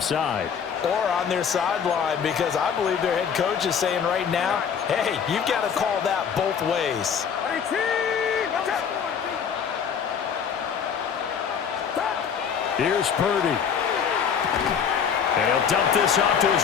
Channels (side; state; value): right; quieter; 7.2 dB